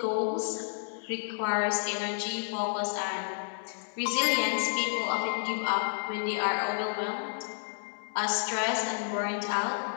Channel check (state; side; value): silent; right; digital silence